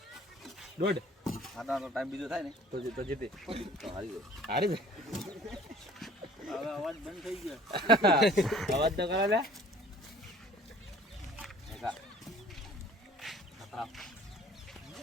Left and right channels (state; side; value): normal; both; correlation 0.51